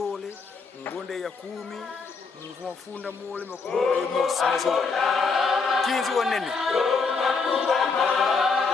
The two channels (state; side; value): quieter; right; 4.7 dB